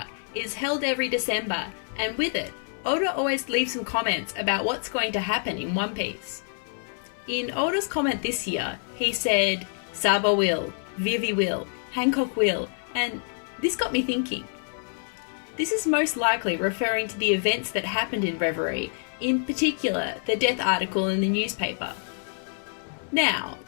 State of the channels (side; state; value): right; silent; 60 dB below the other